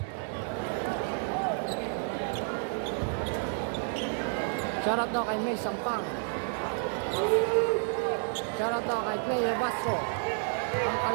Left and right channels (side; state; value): left; silent; 58 dB below the other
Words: Shoutout daw kay May Sampang. Shoutout daw kay Player Basco, ang